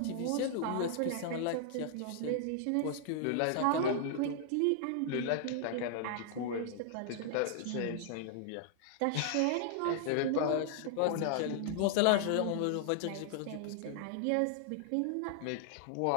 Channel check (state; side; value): different; both; correlation 0.00